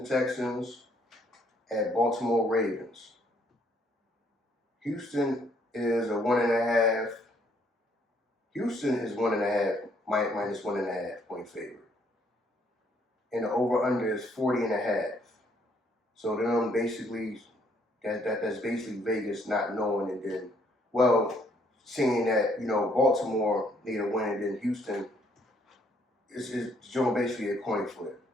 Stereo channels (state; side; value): normal; both; correlation 0.67